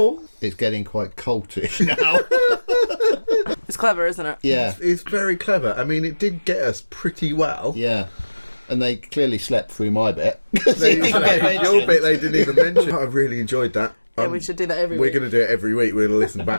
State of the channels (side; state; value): both; inverted; correlation -1.00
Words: It's getting quite cultish now. It's clever, isn't it? Yeah, It's very clever. I mean, it did get us pretty well. yeah. And they clearly slept through my bit. Your bit they didn't even mention. I really enjoyed that. Yeah, we should do that every We're week. going to do it every week. We're going to listen